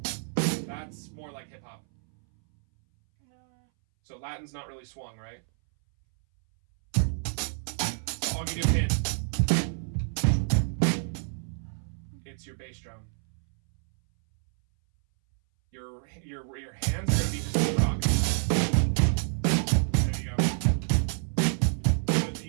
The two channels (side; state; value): left; silent; 59 dB below the other